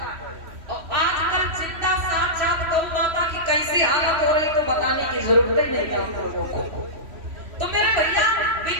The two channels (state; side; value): late; left; 3.1 ms